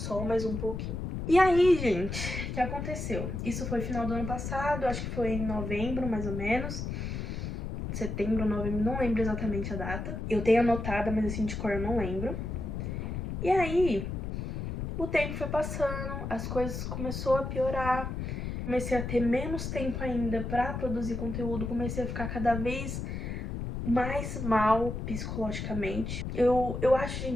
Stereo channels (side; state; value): left; noise; rumble, 4 dB below the sound